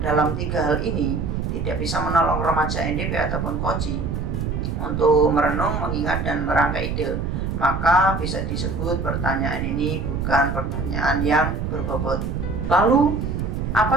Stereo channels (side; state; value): right; noise; rumble, 2 dB below the sound